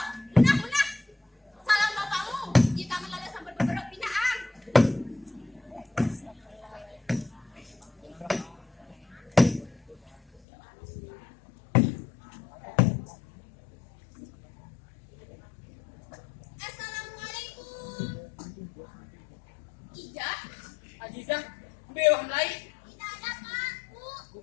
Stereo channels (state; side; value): drops out; right; at 10.4 s